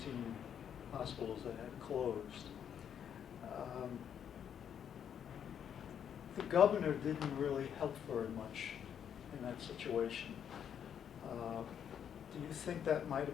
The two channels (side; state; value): right; quieter; 8.6 dB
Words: hospitals that had closed. The governor didn't really help very much in that situation. Do you think that might